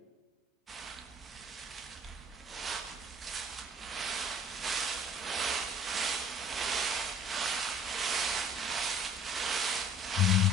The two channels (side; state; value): both; normal; correlation 0.51